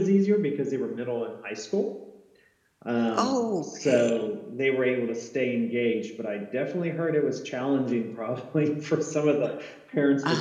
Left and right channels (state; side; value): identical; both; correlation 1.00